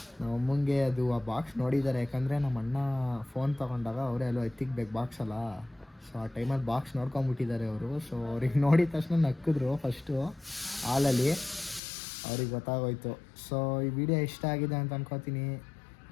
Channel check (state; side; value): drops out; right; at 11.8 s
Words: ನಮ್ಮಮ್ಮಂಗೆ ಅದು ಆ ಬಾಕ್ಸ್ ನೋಡಿದ್ದಾರೆ, ಯಾಕಂದರೆ ನಮ್ಮ ಅಣ್ಣ ಫೋನ್ ತೊಗೊಂಡಾಗ ಅವರೇ ಅಲ್ಲೋ ಎತ್ತಿಕ್ಬೇಕು ಬಾಕ್ಸ್ ಅಲ್ಲ. ಸೊ ಆ ಟೈಮಲ್ಲಿ ಬಾಕ್ಸ್ ನೋಡ್ಕೊಂಬಿಟ್ಟಿದ್ದಾರೆ ಅವರು. ಸೊ ಅವ್ರಿಗೆ ನೋಡಿದ ತಕ್ಷಣ ನಕ್ಕಿದ್ರು ಫಸ್ಟು ಹಾಲಲ್ಲಿ. ಅವ್ರಿಗೆ ಗೊತ್ತಾಗೋಯ್ತು. ಸೊ ಈ ವಿಡಿಯೋ ಇಷ್ಟ ಆಗಿದೆ ಅಂತ ಅನ್ಕೋತೀನಿ.